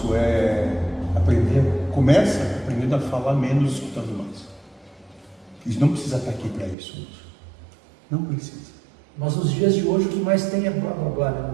é aprender, começa aprendendo a falar menos, escutando mais. Isso não precisa estar aqui para isso, não precisa. Mas nos dias de hoje o que mais tem é blá blá blá, né?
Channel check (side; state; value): left; drops out; at 6.8 s